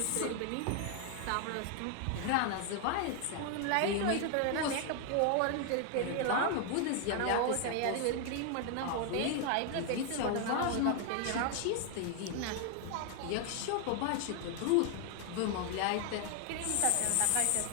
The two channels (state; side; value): different; both; correlation 0.00